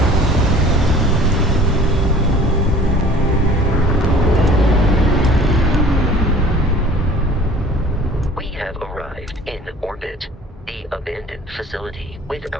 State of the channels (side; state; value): both; normal; correlation 0.48